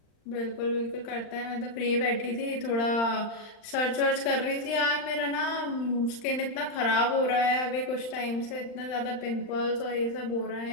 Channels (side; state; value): right; late; 39 ms